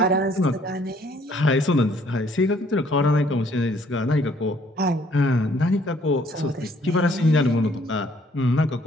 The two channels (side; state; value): both; normal; correlation 0.62